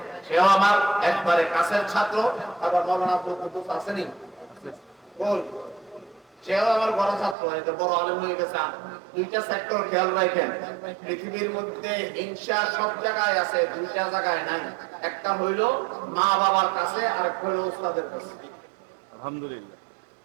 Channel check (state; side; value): drops out; left; at 7.4 s